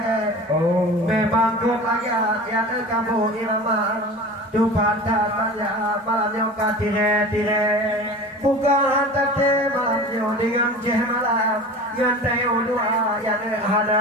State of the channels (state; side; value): normal; both; correlation 0.36